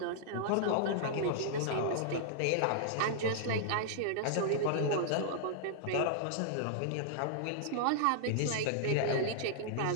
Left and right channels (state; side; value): different; both; correlation -0.01